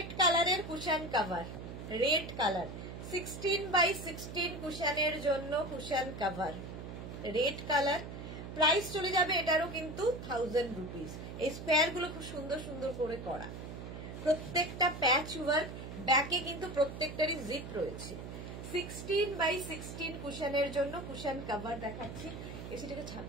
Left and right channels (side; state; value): right; noise; hum, 9 dB below the sound